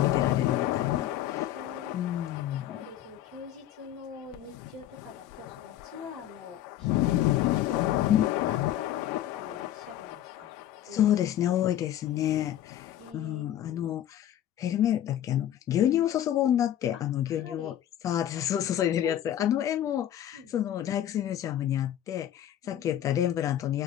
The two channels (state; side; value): quieter; right; 11.7 dB